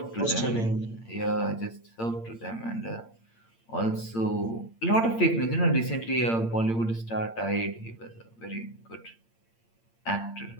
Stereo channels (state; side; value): late; right; 8.8 ms